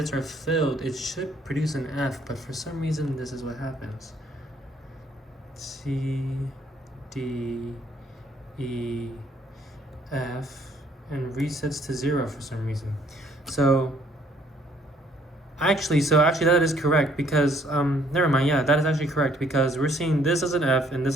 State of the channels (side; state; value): both; normal; correlation 0.64